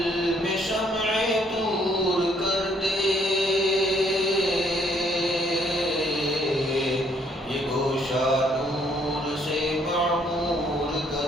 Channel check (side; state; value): both; normal; correlation 0.67